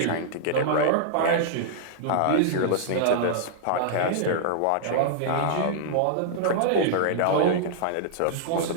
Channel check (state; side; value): different; both; correlation -0.02